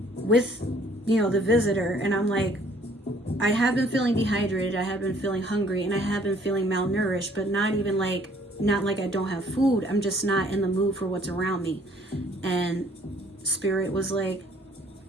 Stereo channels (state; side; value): normal; both; correlation 0.59